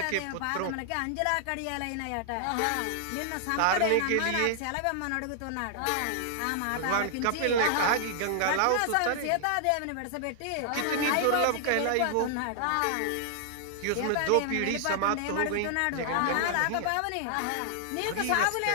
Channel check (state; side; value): different; both; correlation 0.00